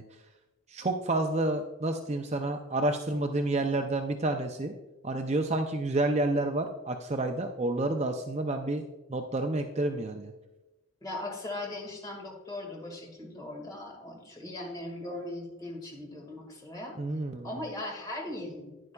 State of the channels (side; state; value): both; normal; correlation 0.44